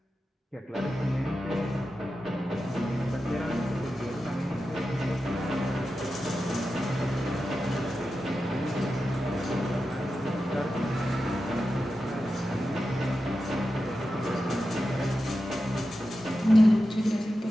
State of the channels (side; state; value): both; normal; correlation 0.91